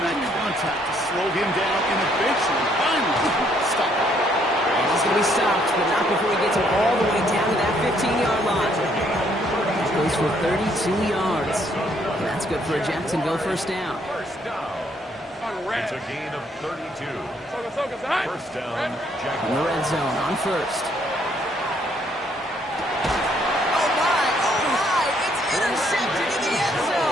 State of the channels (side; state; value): both; normal; correlation 0.68